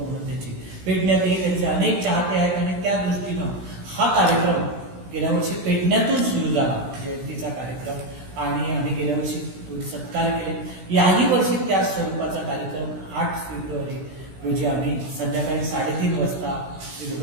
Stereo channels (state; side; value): late; left; 17 ms